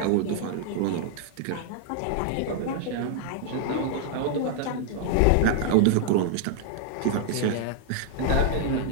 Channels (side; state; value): both; different; correlation 0.00